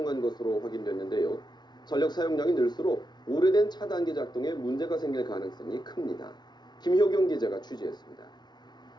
것으로 확인됐는데요. 전력 사용량이 늘수록 오래된 차단기 작동에 문제가 생길 가능성이 큽니다. 김효경 기자가 취재했습니다.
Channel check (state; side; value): late; right; 0.20 ms